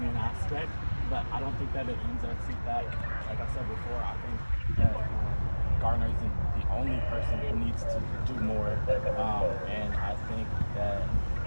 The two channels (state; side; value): inverted; both; correlation -1.00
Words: aspect, but I don't think that it ends at CPAC. Like I said before, I think that Gardiner isn't the only person who needs to do more, and I think that